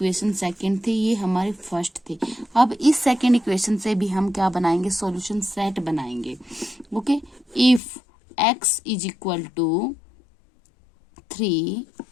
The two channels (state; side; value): drops out; right; at 7.8 s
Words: सेकंड थे, ये हमारे फर्स्ट थे। अब इस सेकंड इक्वेशन से भी हम क्या बनाएंगे, सॉल्यूशन सेट बनाएंगे। Okay, if x is equal to 3